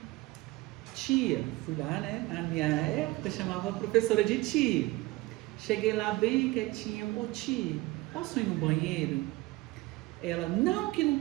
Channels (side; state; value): left; quieter; 20.5 dB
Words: tia, fui lá, né? Na minha época chamava a professora de tia. Cheguei lá bem quietinha, ô tia, posso ir no banheiro? Ela, não, que não